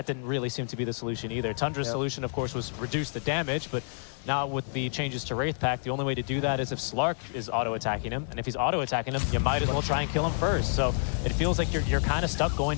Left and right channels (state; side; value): silent; right; digital silence